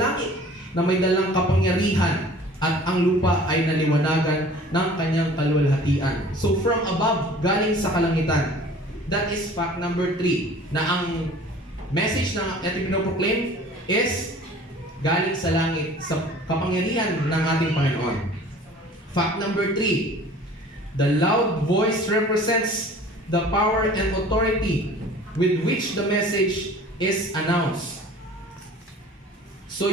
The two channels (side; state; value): both; normal; correlation 0.47